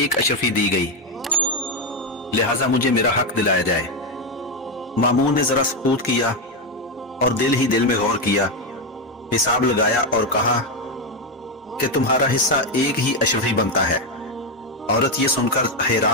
اشرفی دی گئی، لہٰذا مجھے میرا حق دلایا جائے. مامون نے ذرا سکوت کیا اور دل ہی دل میں غور کیا، حساب لگایا اور کہا کہ تمہارا حصہ ایک ہی اشرفی بنتا ہے. عورت یہ سن کر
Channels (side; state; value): both; normal; correlation 0.08